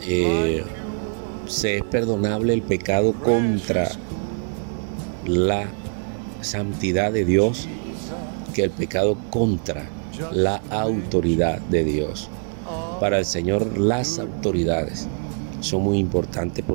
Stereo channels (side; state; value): left; silent; digital silence